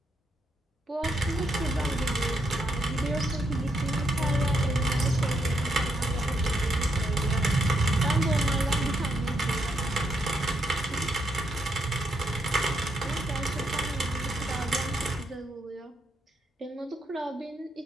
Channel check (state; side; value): normal; both; correlation 0.78